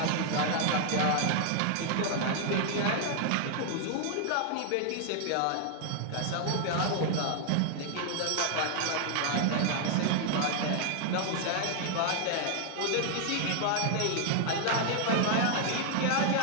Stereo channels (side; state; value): both; different; correlation 0.00